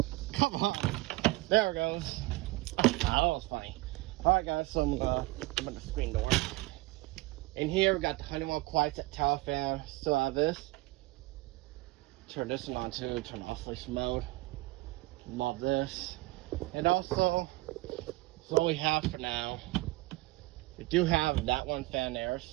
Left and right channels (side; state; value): left; quieter; 20.5 dB